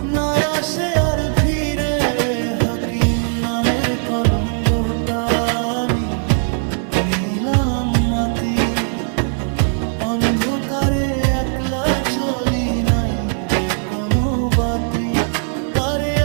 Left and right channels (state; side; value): silent; left; 57 dB below the other